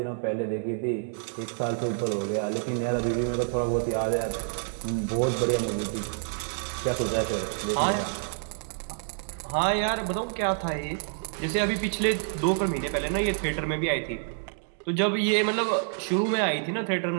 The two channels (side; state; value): left; silent; digital silence